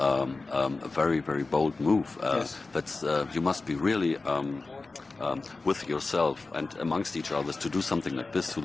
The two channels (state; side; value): quieter; right; 3.7 dB